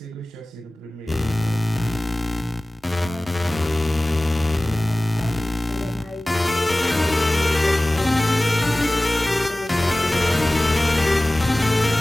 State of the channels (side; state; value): both; normal; correlation 0.98